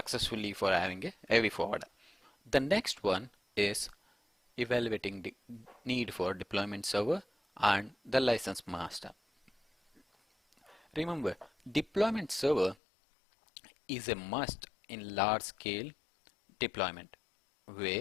for having a AV forwarder. The next one is evaluating the need for deployment server and the license master. Remember, deployment server is a must in large scale deployment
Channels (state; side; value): drops out; right; at 12.8 s